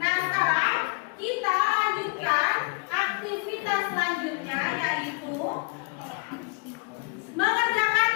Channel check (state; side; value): quieter; right; 33.7 dB